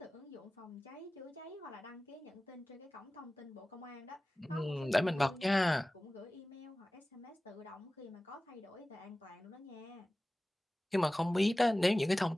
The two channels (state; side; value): normal; both; correlation 0.97